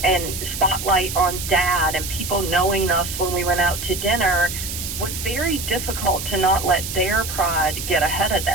and spotlight on dad and people knowing us when we went out to dinner, was very difficult to not let their pride get ahead of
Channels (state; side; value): noise; right; hiss, 6 dB below the sound